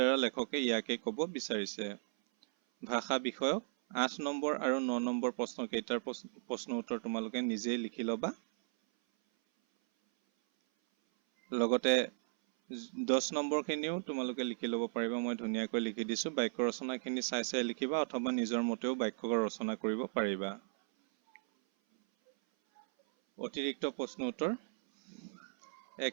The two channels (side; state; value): left; silent; 54 dB below the other